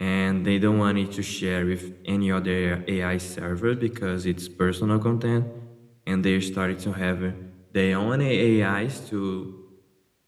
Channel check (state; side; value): identical; both; correlation 1.00